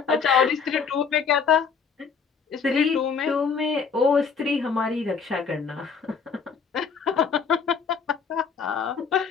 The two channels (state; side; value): quieter; right; 5.9 dB